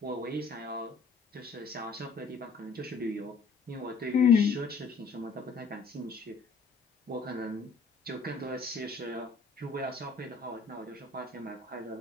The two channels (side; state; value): right; quieter; 4.5 dB